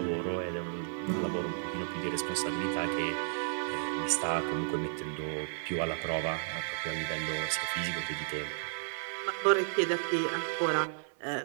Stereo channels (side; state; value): left; silent; 56 dB below the other